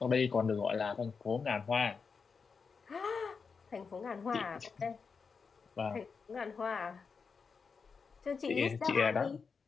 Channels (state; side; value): quieter; right; 5.3 dB